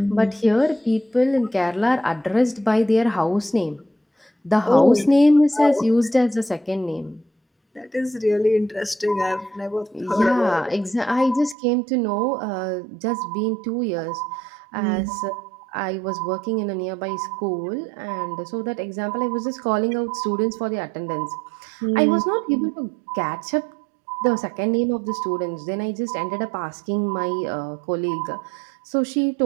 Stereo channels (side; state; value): left; drops out; at 11.6 s